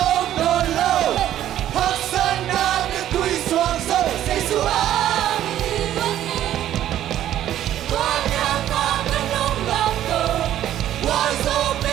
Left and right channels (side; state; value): left; quieter; 12.0 dB